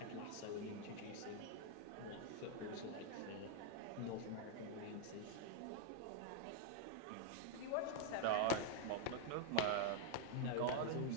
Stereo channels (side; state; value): both; different; correlation 0.00